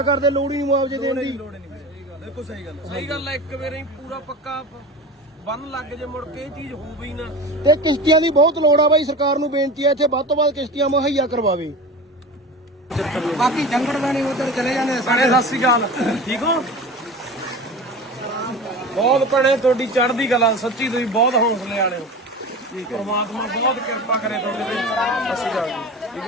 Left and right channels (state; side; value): normal; both; correlation 0.32